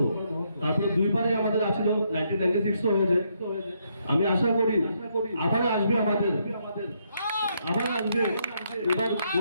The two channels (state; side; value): inverted; both; correlation -0.75